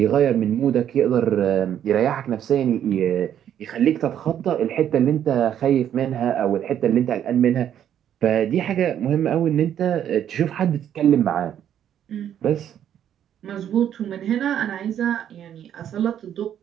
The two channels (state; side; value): quieter; left; 10.0 dB